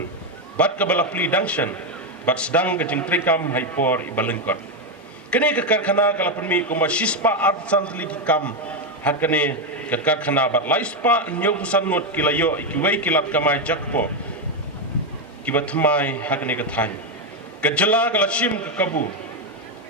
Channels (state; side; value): normal; both; correlation 0.05